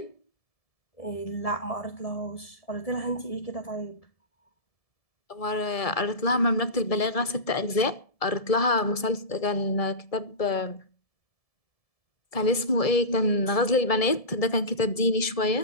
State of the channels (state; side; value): late; right; 1.7 ms